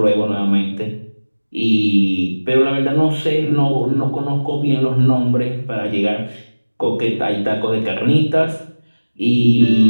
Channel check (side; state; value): both; inverted; correlation -1.00